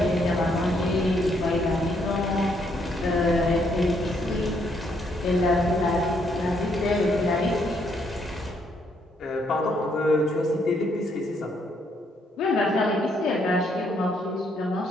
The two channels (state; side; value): normal; both; correlation 0.72